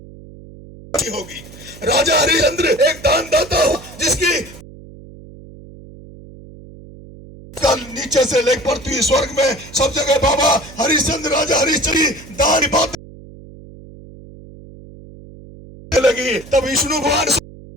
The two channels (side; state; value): right; noise; hum, 19 dB below the sound